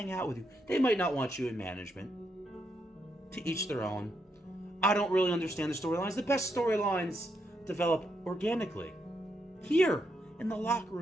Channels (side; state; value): both; normal; correlation 0.79